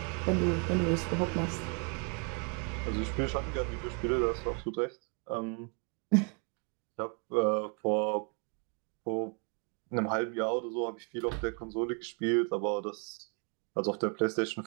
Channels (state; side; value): quieter; left; 37.2 dB